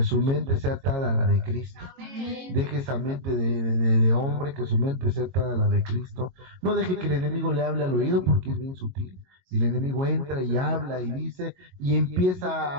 su mente sea atada a la de Cristo. Deje esa mente de hombre, que su mente sea atada a la de Cristo. No deje que el enemigo le hable al oído, porque es bien sutil. Y el enemigo entra y habla y dice, y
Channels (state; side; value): late; left; 22 ms